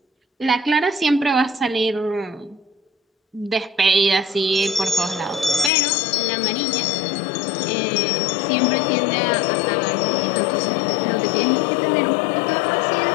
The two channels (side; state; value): right; drops out; at 5.7 s